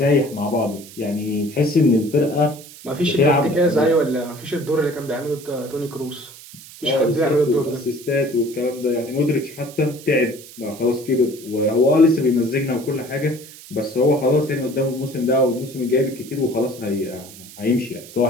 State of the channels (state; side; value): noise; right; hiss, 18 dB below the sound